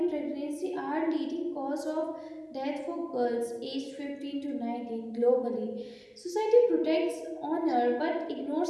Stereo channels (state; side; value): identical; both; correlation 1.00